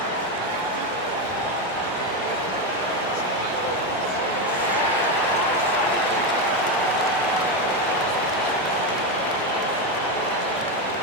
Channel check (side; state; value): both; normal; correlation 0.11